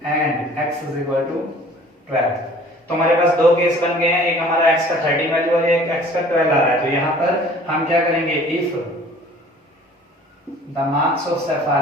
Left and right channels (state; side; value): normal; both; correlation 0.50